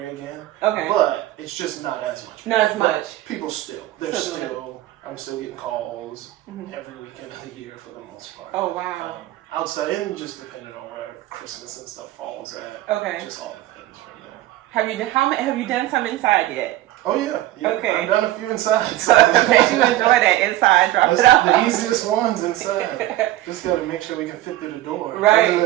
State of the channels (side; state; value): left; quieter; 15.3 dB